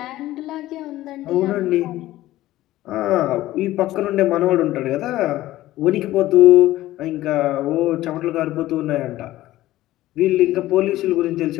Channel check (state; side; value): quieter; right; 15.7 dB